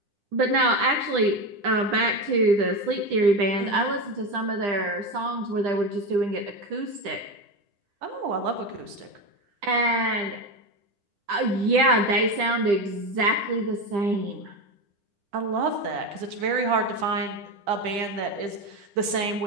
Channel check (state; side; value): late; left; 10 ms